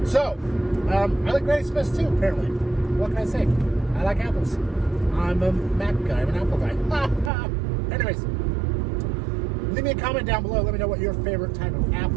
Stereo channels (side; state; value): left; drops out; at 7.3 s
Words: So, I like Granny Smith too, apparently. What can I say? I like apples. I'm a Mac guy. I'm an apple guy. Anyways, leave me a comment down below. Let me know what your favorite type of